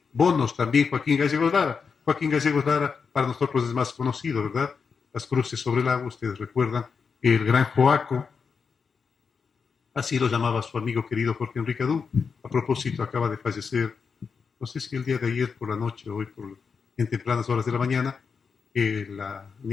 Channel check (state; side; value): quieter; right; 5.7 dB